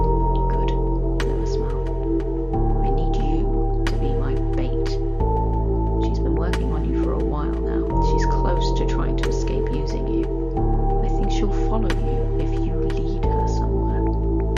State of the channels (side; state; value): both; identical; correlation 1.00